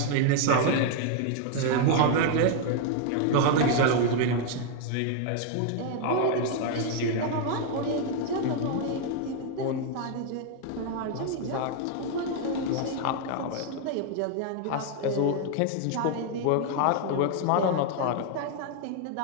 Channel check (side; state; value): both; different; correlation 0.00